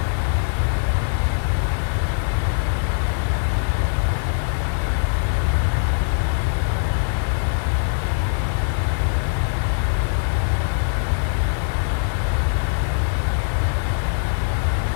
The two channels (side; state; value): right; silent; 64 dB below the other